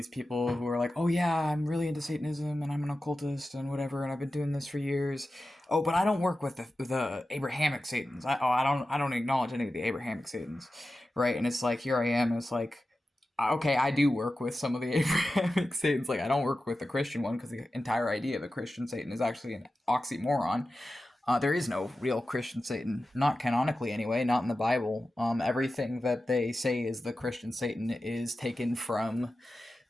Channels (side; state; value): both; normal; correlation 0.93